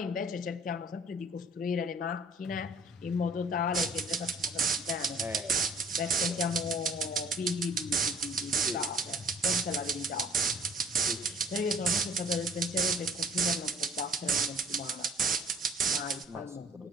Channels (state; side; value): normal; both; correlation 0.53